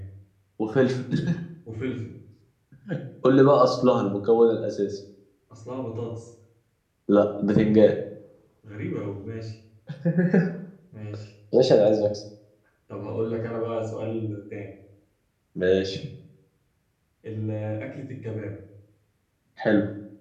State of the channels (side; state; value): both; identical; correlation 1.00